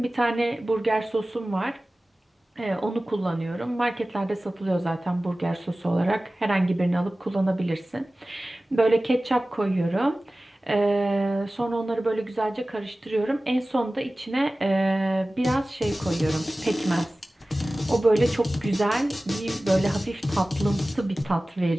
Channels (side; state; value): both; normal; correlation 0.97